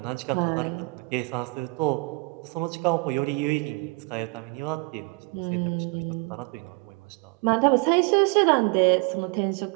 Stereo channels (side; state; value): left; quieter; 28.4 dB